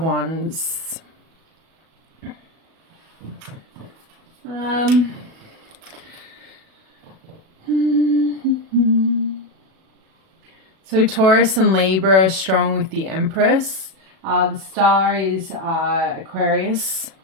Wands. So Taurus and Libra are strong with the Empress. The star is Aquarius.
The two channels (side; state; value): left; late; 37 ms